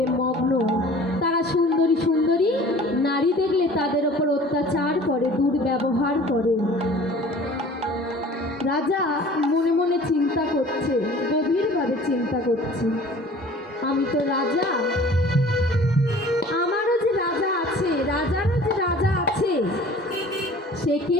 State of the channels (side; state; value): both; normal; correlation 0.47